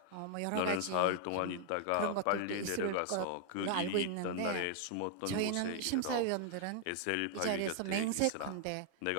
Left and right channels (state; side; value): different; both; correlation 0.00